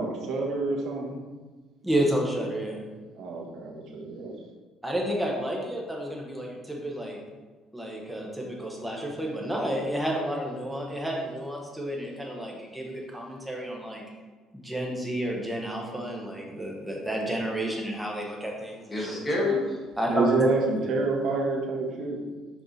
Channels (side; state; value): both; normal; correlation 0.71